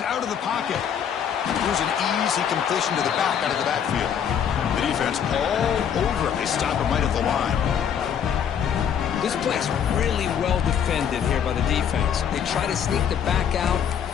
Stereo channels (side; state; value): right; quieter; 8.3 dB